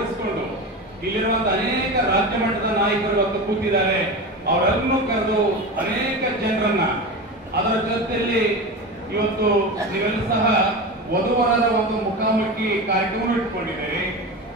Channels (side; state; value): both; normal; correlation 0.25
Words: ಇಲ್ಲಿರುವಂತಹ ಅನೇಕ ರಾಜ್ಯ ಮಟ್ಟದ ನಾಯಕರು ಇವತ್ತು ಕೂತಿದ್ದಾರೆ. ಅವರನ್ನು ಕರೆದು ಅನೇಕ ಜನರನ್ನ ಅದರ ಜೊತೆಯಲ್ಲಿ ಇವತ್ತು ನೀವೆಲ್ಲ ಸಹ ವಧುವರರ ಒಂದು ಮುಖಾಮುಖಿ ಕಾರ್ಯಕ್ರಮ ಇಟ್ಕೊಂಡಿದ್ದೀರಿ,